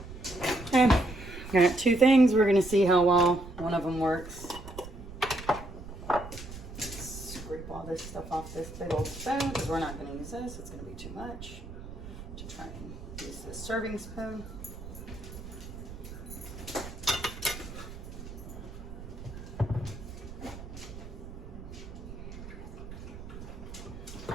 Okay, got two things. We're going to see how well one of them works. Scrape all this stuff off this big old spoon because we're not going to use this. It's going to be too much. To try and use this serving spoon.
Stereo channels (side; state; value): right; noise; rumble, 12 dB below the sound